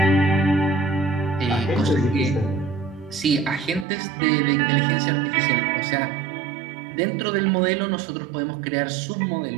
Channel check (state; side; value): drops out; left; at 3.9 s